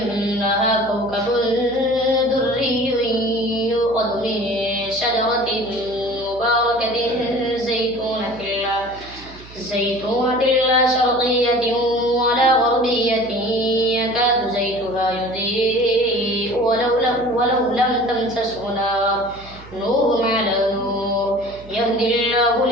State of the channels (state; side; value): noise; right; hum, 19 dB below the sound